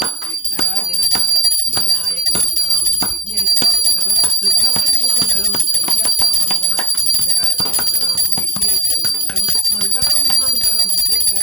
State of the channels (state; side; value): normal; both; correlation 0.44